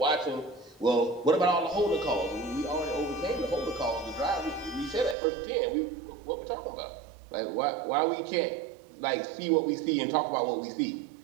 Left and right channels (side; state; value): left; drops out; at 5.2 s